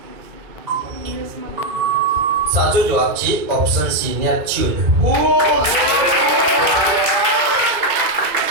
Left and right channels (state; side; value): late; left; 2.2 ms